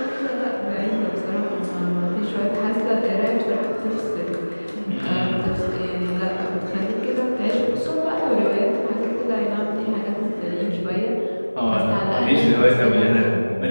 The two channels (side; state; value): both; inverted; correlation -1.00